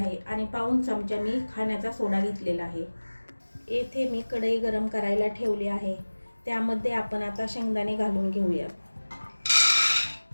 आणि पाऊण चमचा मी खाण्याचा सोडा घेतलेला आहे. येथे मी कढई गरम करायला ठेवली आहे. त्यामध्ये आपण आता शेंगदाणे घालून घेऊया.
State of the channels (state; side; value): inverted; both; correlation -1.00